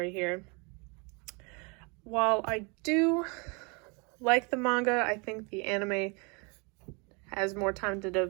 here. While I do like the manga, I think the anime has more time to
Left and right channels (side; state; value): left; quieter; 31.6 dB